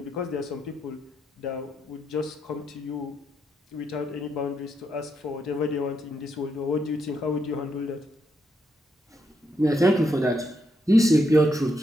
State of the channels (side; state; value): both; normal; correlation 0.80